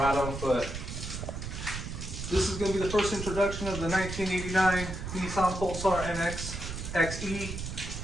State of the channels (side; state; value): right; noise; rumble, 6 dB below the sound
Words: But this is going to be the first introduction of the 1989 Nissan Pulsar NX XE.